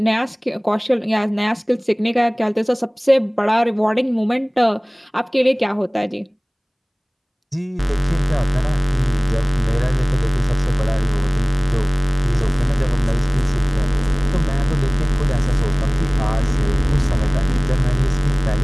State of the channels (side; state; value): both; identical; correlation 1.00